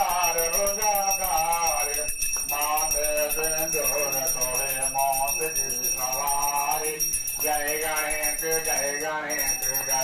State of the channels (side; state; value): both; identical; correlation 1.00